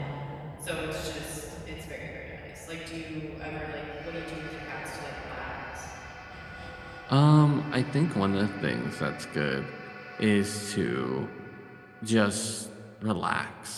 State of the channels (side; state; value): both; identical; correlation 1.00